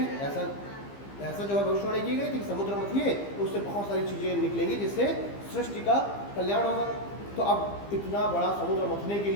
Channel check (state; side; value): late; right; 15 ms